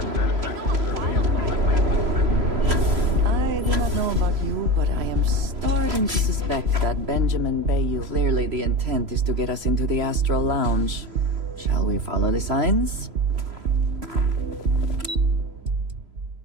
But I am starting to suspect that Benjamin Bayou. Clearly the intent is to get us into the Astral Lounge. Shall we follow the signs?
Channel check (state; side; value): late; left; 3.0 ms